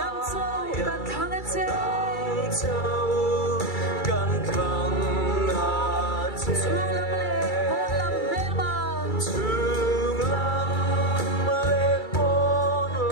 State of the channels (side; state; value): right; late; 2.3 ms